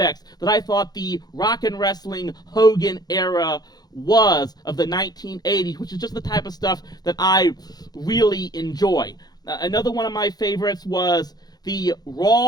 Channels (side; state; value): right; late; 0.19 ms